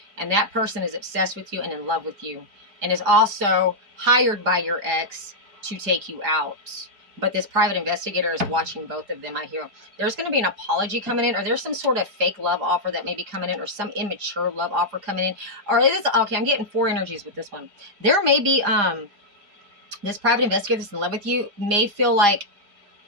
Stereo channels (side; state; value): left; late; 4.9 ms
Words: And that person is obsessed with you and in love with you, and is also hired by your ex to take you out. But this private investigator is watching both of them, I hear. There's going to be an apology coming in, or there's some sort of fake love offer that may be coming in, or some immature love offer coming in. Or it is, okay, I'm getting 4 energies with this one. There may be, this private investigator that's in love with you may feel like